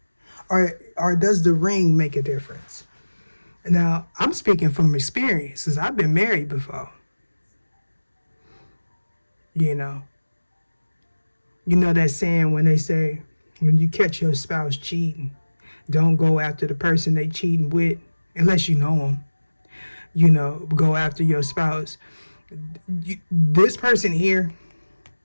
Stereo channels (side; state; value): both; inverted; correlation -1.00